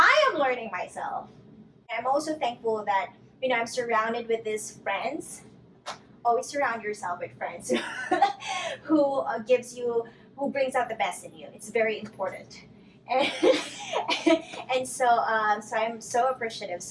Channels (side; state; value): both; identical; correlation 1.00